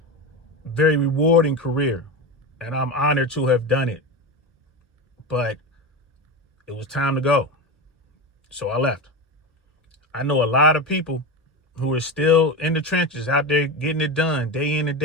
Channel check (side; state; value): both; normal; correlation 0.20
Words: very rewarding career. And I'm honored to have done it. But it was time to go. So I left. I know a lot of people who are still in the trenches out there getting it done day in and